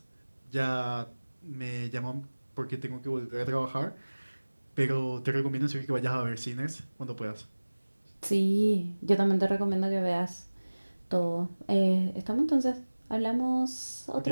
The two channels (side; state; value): both; inverted; correlation -1.00